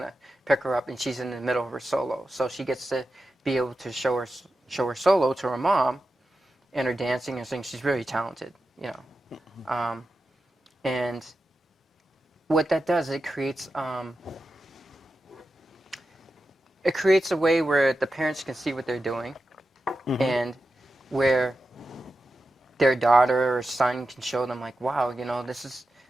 pick her up, and she's in the middle of her solo, so she gets to be able to show her solo to her mom, and her dancing and singing. She's really talented, you know. And what that does, it creates a way where the parents can see what they're doing, and where their daughter or son can show them like, wow, you know, this is,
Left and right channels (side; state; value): both; normal; correlation 0.91